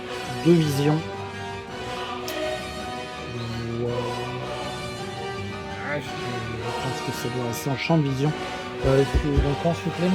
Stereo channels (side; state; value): both; identical; correlation 1.00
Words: de vision. Je pense que ça doit rester en champ de vision. Donc ensuite les